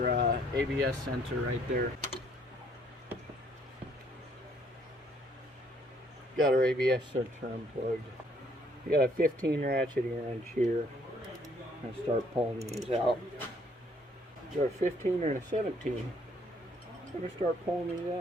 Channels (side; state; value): both; normal; correlation 0.65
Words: ABS sensor right there. Got our ABS sensor unplugged. You got a 15 ratcheting wrench here. And start pulling these out. Is there a 15 or a 17? I'm gonna start pulling these